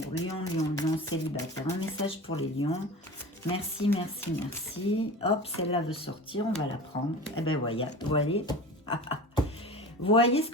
lion, lion, lion, célibataire. Un message pour les lions. Merci, merci, merci. Hop, celle-là veut sortir, on va la prendre. Eh ben voilà, voyez. Voyez ce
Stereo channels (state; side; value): normal; both; correlation 0.34